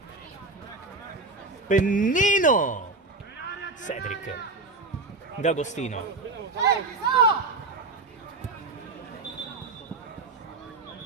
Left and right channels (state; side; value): quieter; left; 3.4 dB